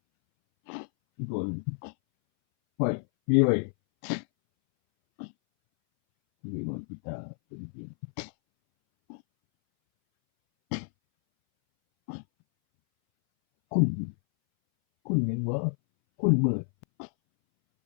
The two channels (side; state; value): right; silent; 59 dB below the other